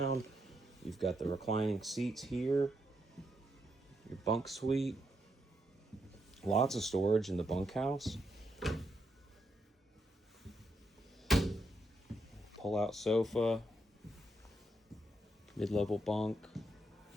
You've got the reclining seats here, your bunk suite, lots of storage in the bunkhouse. Pull-out sofa, mid-level bunk.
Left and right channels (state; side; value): normal; both; correlation 0.80